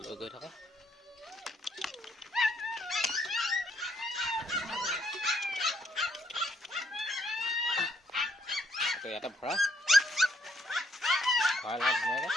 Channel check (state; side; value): normal; both; correlation 0.71